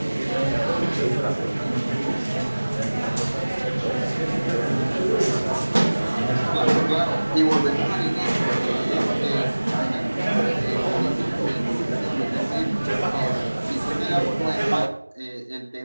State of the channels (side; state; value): both; inverted; correlation -1.00